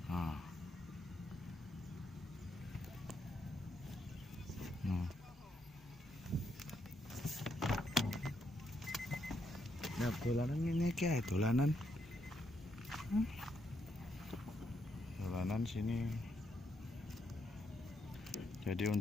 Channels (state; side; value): normal; both; correlation 0.78